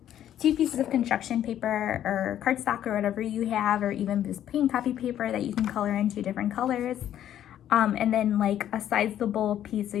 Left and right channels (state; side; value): quieter; right; 11.1 dB